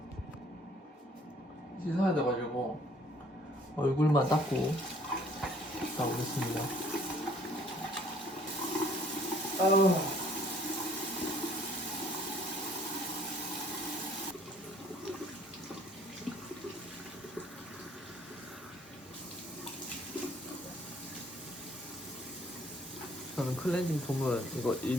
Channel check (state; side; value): normal; both; correlation 0.59